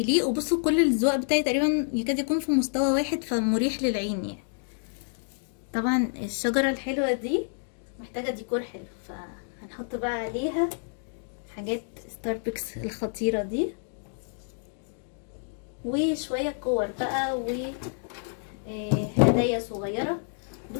وبصوا كل الزواق بتاعي تقريبا يكاد يكون في مستوى واحد فمريح للعين يعني. طبعا الشجرة الحلوة دي محتاجة ديكور حلو، فهنحط بقى عليها حاجات ستاربكس الخطيرة دي وشوية كور بقى وهدايا صغيرة.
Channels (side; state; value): right; silent; 59 dB below the other